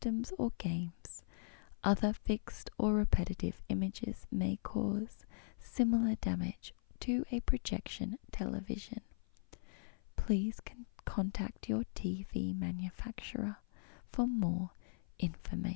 or games. Other fixed or repetitive images may cause similar damage to a projection television. Please contact your TV manufacturer for more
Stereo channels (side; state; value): right; silent; 52 dB below the other